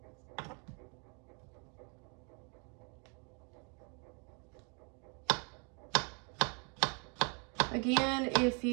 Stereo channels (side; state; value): left; quieter; 36.2 dB